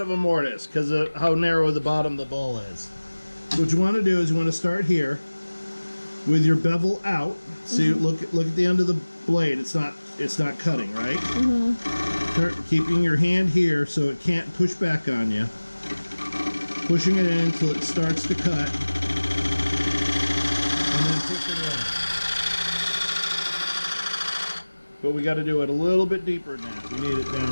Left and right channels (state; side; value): inverted; both; correlation -1.00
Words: a mortise because of how narrow the bottom of the bowl is. So what you want to do is you want to start here with your bevel out. See, look at the end of the blade. It's not cutting, right? Keeping your hand here so it can't push back on you. Pushing it in until it starts to cut. Push it in. But we got to do it a little bit deeper now. We need it